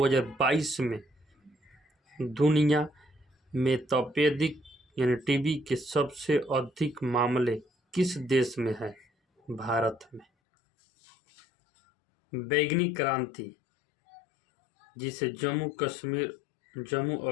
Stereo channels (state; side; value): drops out; right; at 10.2 s